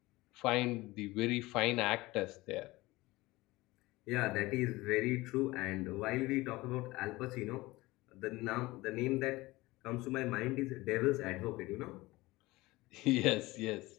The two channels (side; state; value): right; quieter; 20.3 dB